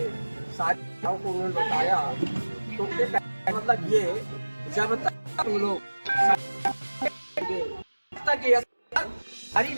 सारी बातों को उन्होंने बताया। तो मतलब ये जब तक तुम लोग तक ये हरी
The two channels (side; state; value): both; inverted; correlation -1.00